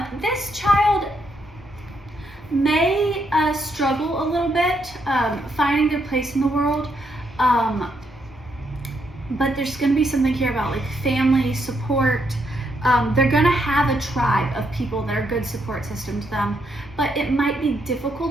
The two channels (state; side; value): normal; both; correlation 0.77